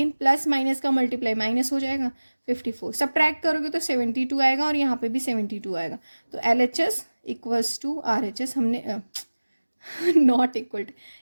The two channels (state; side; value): inverted; both; correlation -1.00